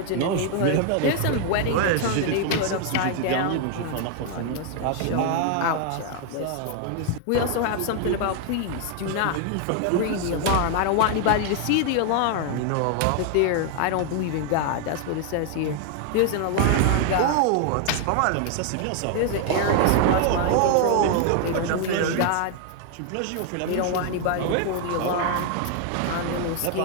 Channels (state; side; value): different; both; correlation 0.00